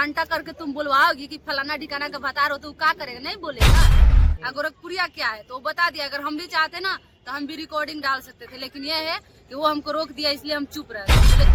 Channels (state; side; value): identical; both; correlation 1.00